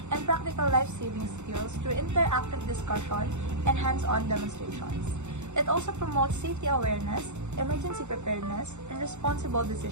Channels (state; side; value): late; left; 0.83 ms